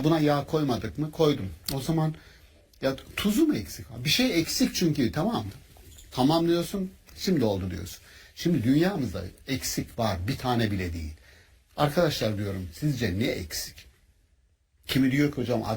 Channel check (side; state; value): both; identical; correlation 1.00